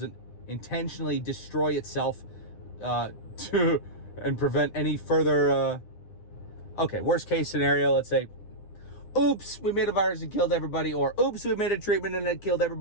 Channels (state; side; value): late; right; 9.8 ms